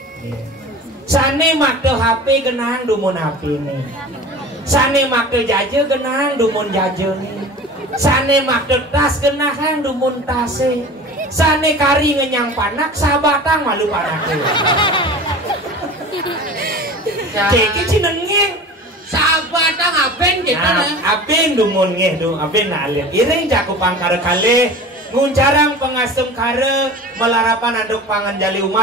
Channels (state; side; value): normal; both; correlation 0.37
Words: Sane makde HP genang dumun HP nih. Sane makde jaje genang dumun jaje nih. Sane makde tas genang dumun tase. Sane kari ngenyang panak sabatang malu panake. Ceki cinengeng sabatang aben gitu nah. Aben dumun ngeh du aben nalir. Iring cakupang kare kali nguncarang pengasem kare melarapan anduk pangan jali